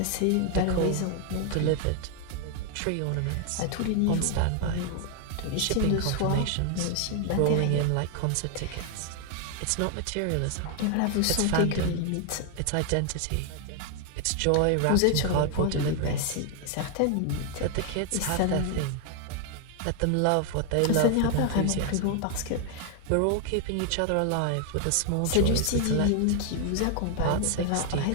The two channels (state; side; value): different; both; correlation 0.00